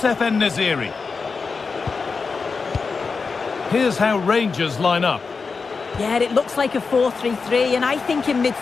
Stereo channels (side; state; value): right; quieter; 4.8 dB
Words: En-Nesyri. Here's how Rangers line up. Yeah, it looks like a 4-3-3, and I think in